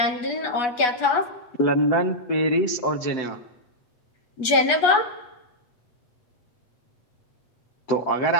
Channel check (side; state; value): right; late; 8.2 ms